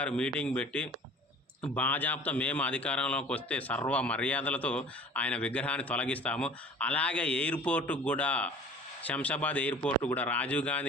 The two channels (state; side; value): normal; both; correlation 0.45